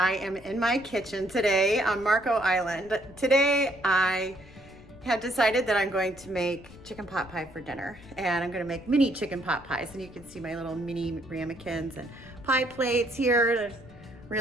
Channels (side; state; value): left; noise; rumble, 21 dB below the sound